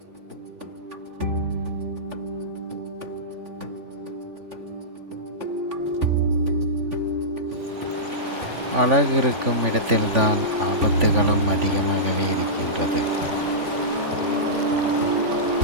அழகு இருக்கும் இடத்தில்தான் ஆபத்துகளும் அதிகமாகவே இருக்கின்றது.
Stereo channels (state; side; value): late; left; 3.5 ms